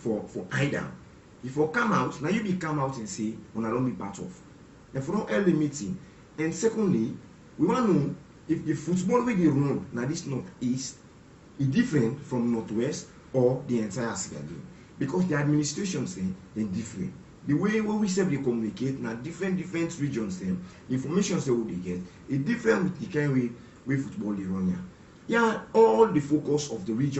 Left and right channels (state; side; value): identical; both; correlation 1.00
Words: either. If you come out, now you be come out and say, when I don't be part of. And for no early meeting. And secondly, we want to know if the football way they run now this northeast is different from northwest or the entire Sierra game. Because the administrations they're different. The way we say they communicate now different regions them, information they will get is different with the kind way football they run here. Yeah, all the focus of the